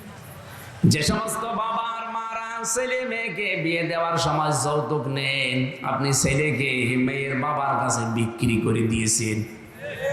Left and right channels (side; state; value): both; identical; correlation 1.00